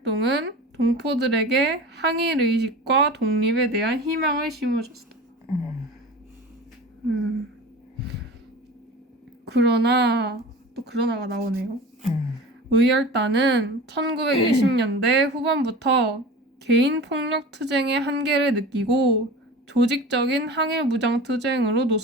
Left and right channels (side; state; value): both; normal; correlation 0.35